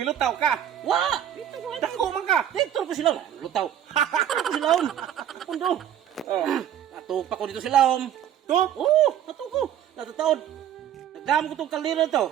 ka. wa. Dito ko. Dako man ka. Dito ko sila. Lutaw. Dito ko sila. Pundo. Oh. Atupa ko dito sila. To? Oo, atuko. Natataon. Nagdam ko tong kaliro to.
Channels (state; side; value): quieter; left; 10.5 dB